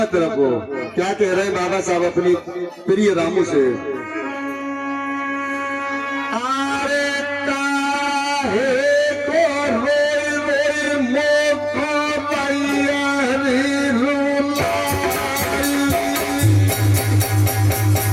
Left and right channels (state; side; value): identical; both; correlation 1.00